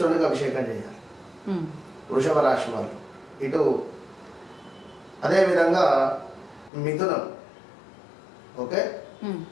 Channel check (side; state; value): right; drops out; at 6.7 s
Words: అభిషేకం చేయాలి వృషభ రాశి వాళ్ళు. ఇటు అదేవిధంగా మిథునం, ఓకే,